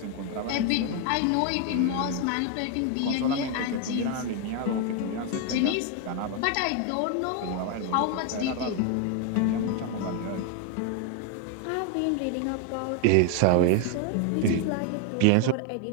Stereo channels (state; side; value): different; both; correlation 0.01